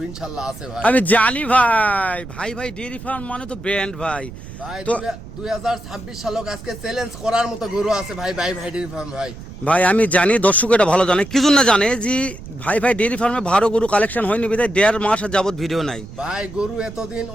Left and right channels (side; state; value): right; noise; rumble, 14 dB below the sound